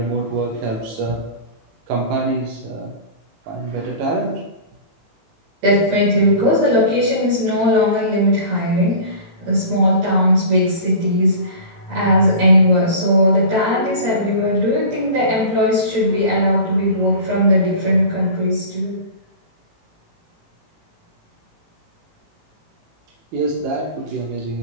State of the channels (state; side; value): late; left; 18 ms